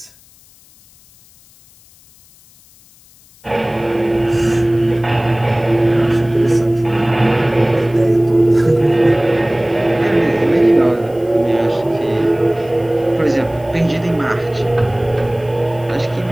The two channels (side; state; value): left; noise; hiss, 28 dB below the sound